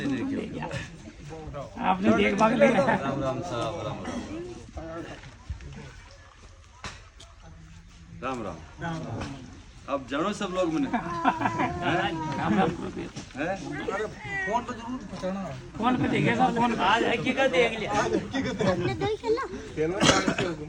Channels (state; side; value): identical; both; correlation 1.00